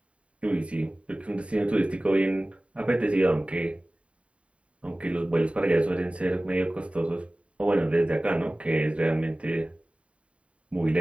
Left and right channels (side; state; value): left; late; 0.063 ms